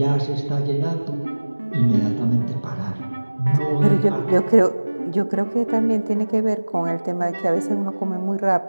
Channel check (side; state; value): both; inverted; correlation -1.00